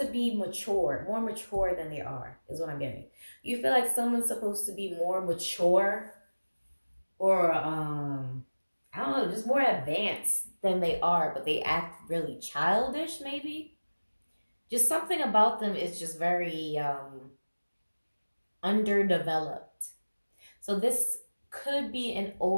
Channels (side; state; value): both; inverted; correlation -1.00